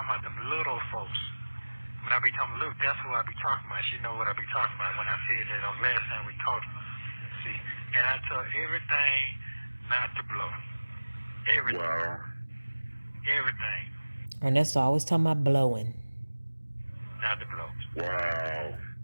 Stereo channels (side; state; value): both; inverted; correlation -1.00